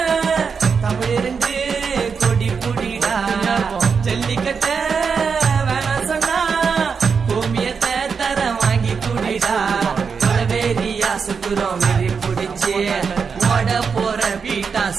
தமிழிருந்து கொடி புடிடா ஜல்லிக்கட்ட வேணாம் சொன்னா கோமியத்தை தர வாங்கி குடிடா கொலவேரியா சுத்துறோம் வெறி புடிச்சு ஓட போற வீட்டா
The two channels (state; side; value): quieter; left; 5.8 dB